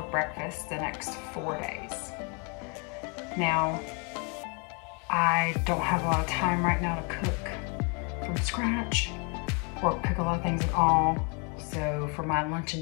breakfast the next 4 days. Now, I don't have a lot of time right now to cook from scratch or cook a lot of things at all. So for my lunch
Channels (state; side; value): quieter; right; 34.9 dB